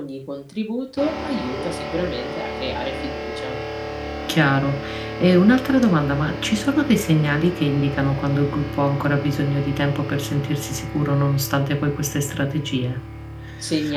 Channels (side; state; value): both; identical; correlation 1.00